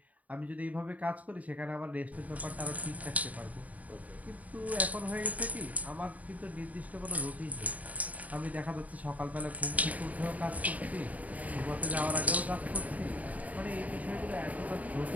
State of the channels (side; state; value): left; late; 0.072 ms